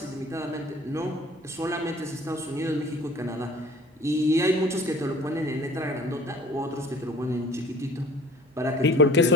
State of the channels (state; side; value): normal; both; correlation 0.48